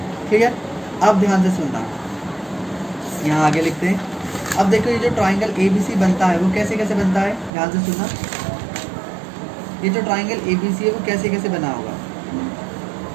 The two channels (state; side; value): drops out; left; at 7.5 s